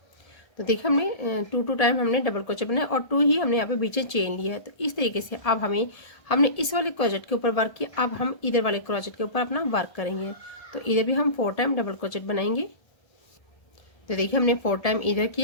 तो देखिए हमने 2 टाइम हमने डबल क्रोचेट बनाया और 2 ही हमने यहाँ पे बीच में चेन लिया है। तो इस तरीके से अब हमने इस वाले क्रोचेट के ऊपर वर्क किया, अब हम इधर वाले क्रोचेट के ऊपर अपना वर्क करेंगे। तो इधर भी हम 4 टाइम डबल क्रोचेट बनाएंगे। तो देखिए हमने 4 टाइम इधर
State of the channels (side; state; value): right; late; 1.7 ms